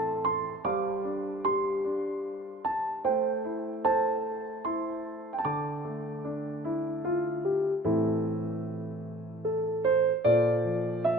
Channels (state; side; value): normal; both; correlation 0.51